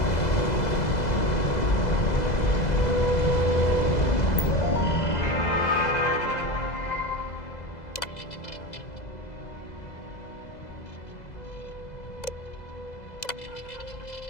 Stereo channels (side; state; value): right; late; 2.0 ms